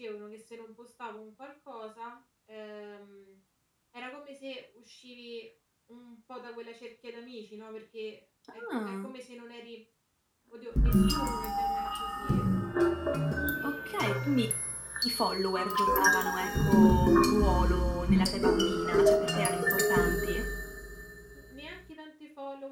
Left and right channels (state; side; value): identical; both; correlation 1.00